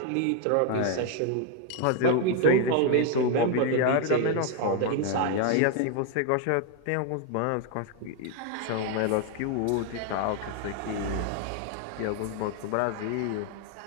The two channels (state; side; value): different; both; correlation 0.00